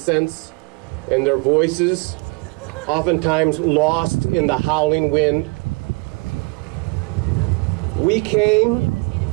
and their voices, oftentimes lost in the howling wind. We came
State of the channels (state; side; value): quieter; left; 30.0 dB